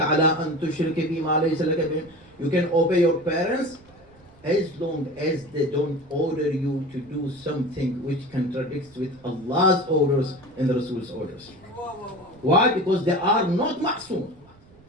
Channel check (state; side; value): noise; right; rumble, 27 dB below the sound